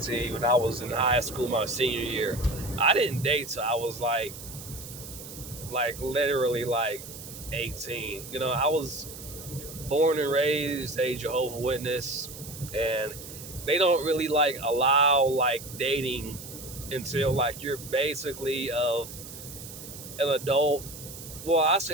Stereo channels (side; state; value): right; noise; hiss, 13 dB below the sound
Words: when I was in high school my senior year. I didn't date till I was literally like 18. I was born and raised a Jehovah's Witness, and they don't really allow dating until you're basically of an adult. Well, I